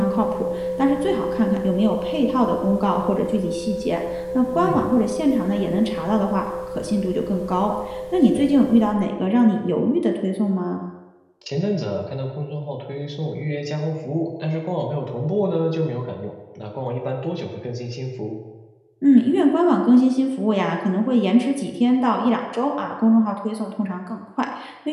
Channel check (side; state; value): both; identical; correlation 1.00